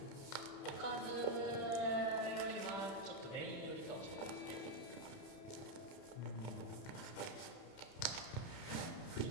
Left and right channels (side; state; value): right; late; 31 ms